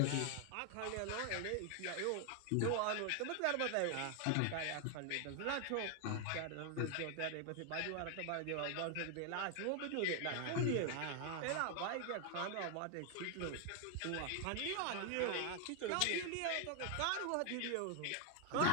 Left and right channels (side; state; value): both; different; correlation 0.01